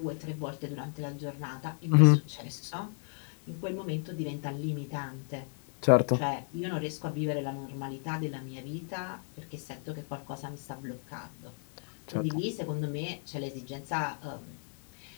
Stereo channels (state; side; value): silent; right; 55 dB below the other